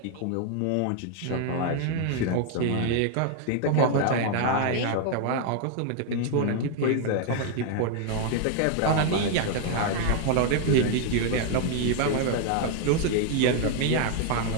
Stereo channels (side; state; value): both; different; correlation 0.00